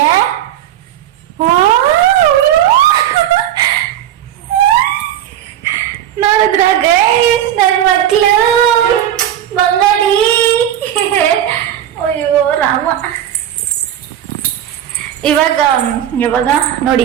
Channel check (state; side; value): quieter; left; 11.1 dB